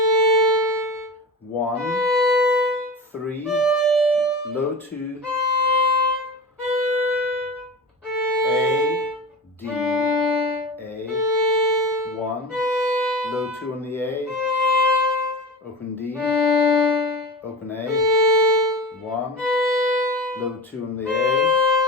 1, 3, low 2, A, D, A, 1, low 2 on the A, open D, open A, 1, low 2 on the A,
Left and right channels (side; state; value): both; normal; correlation 0.29